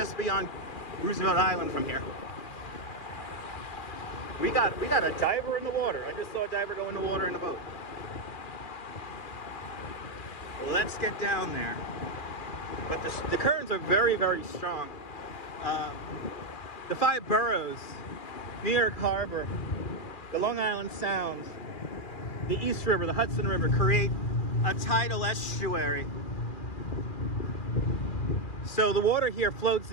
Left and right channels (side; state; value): right; late; 2.4 ms